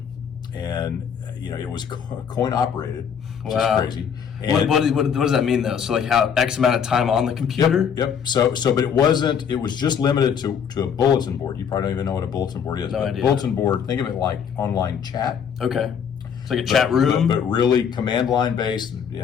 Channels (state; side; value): quieter; right; 7.5 dB